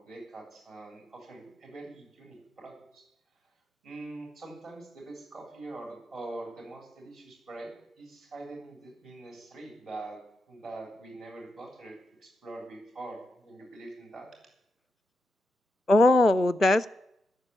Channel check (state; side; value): normal; both; correlation 0.86